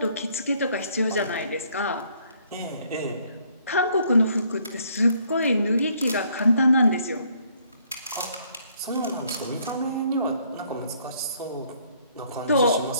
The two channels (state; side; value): inverted; both; correlation -0.66